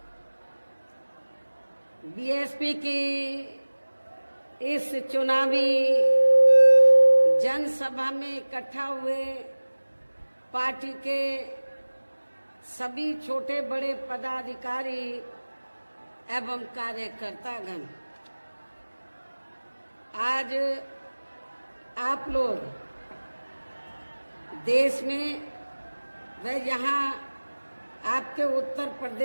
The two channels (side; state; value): both; inverted; correlation -1.00